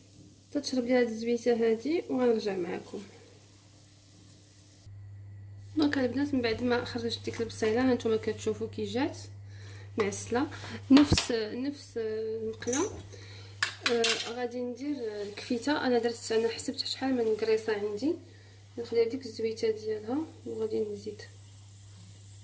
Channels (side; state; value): both; identical; correlation 1.00